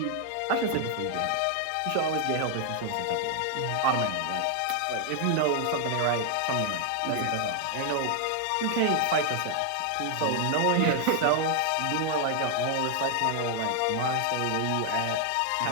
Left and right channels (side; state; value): both; different; correlation 0.00